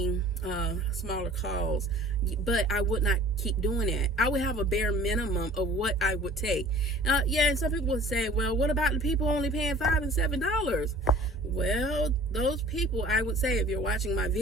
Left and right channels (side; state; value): both; normal; correlation 0.47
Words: smaller calls, but I would not keep doing that. I would have a bare minimum of what I would take. And some people would say, well, what about the people only paying $5 and $7? Well, those people, I would say, if you're watching my